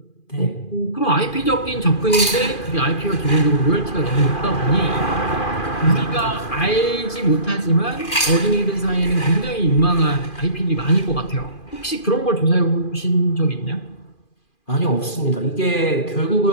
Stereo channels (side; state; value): right; late; 2.4 ms